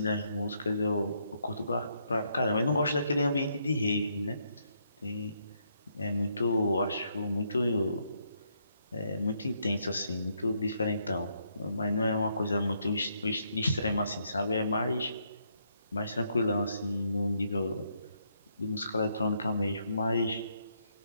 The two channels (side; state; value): both; inverted; correlation -0.75